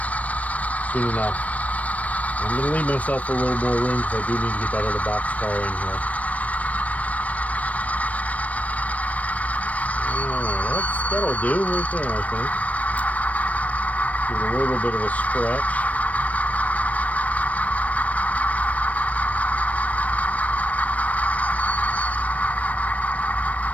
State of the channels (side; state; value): right; late; 0.069 ms